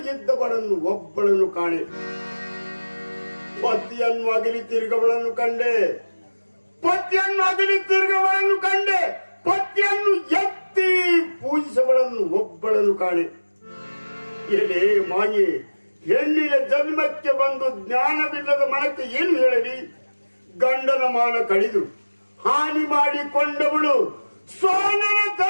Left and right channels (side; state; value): both; inverted; correlation -1.00